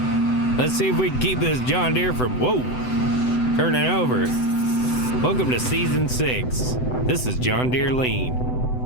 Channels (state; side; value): late; right; 7.9 ms